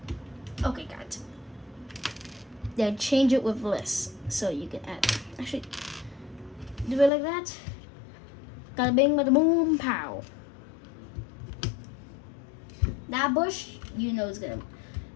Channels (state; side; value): drops out; right; at 7.1 s